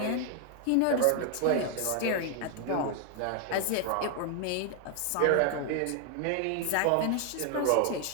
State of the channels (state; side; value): different; both; correlation 0.00